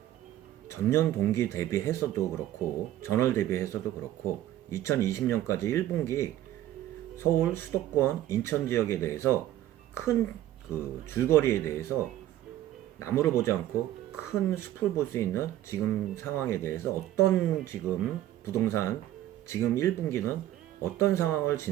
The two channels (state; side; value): quieter; left; 13.3 dB